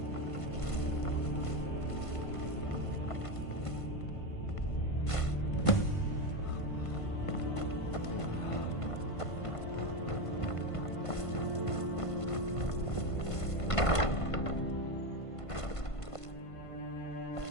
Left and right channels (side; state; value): right; late; 1.5 ms